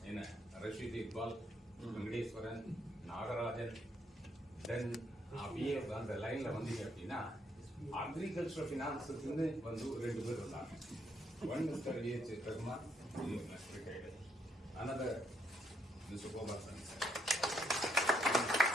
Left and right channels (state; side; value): normal; both; correlation 0.72